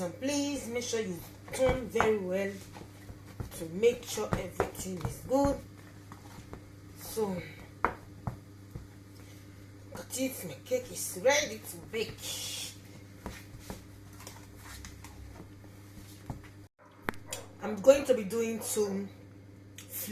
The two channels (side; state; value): both; identical; correlation 1.00